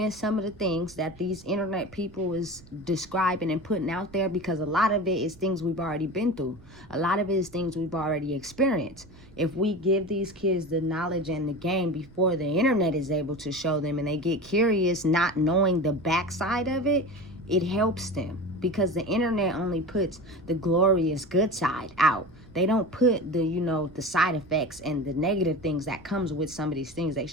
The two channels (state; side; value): noise; right; rumble, 23 dB below the sound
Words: some of the things that these internet people is describing and putting out there, because a lot of it is things we've already been through. A lot of it is things we've already experienced. If we give these kids the knowledge and the game before the internet is able to show them, and they get curious not knowing the backside of it, it helps them, because the internet only puts the glorious good side out. They don't put the, you know, the side effects and the negative things that comes with some of these things they